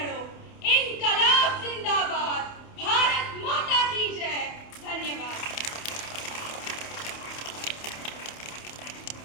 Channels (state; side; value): late; right; 28 ms